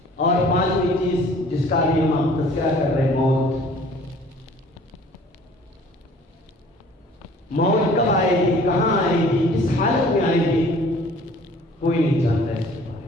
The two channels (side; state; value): both; normal; correlation 0.52